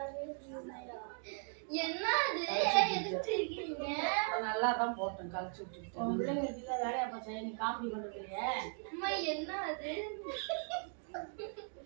என்ன எதுக்கு இருக்கீங்க? நல்லா தான் போட்டேன் கழிச்சு விட்டுட்டேன். பிள்ளைங்க வீட்டுல வேலையா போச்சா? நீ காமெடி பண்றதுலையே அம்மா என்ன அது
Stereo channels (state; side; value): silent; left; 52 dB below the other